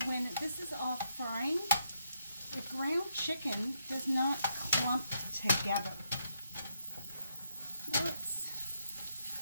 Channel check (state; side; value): inverted; both; correlation -0.77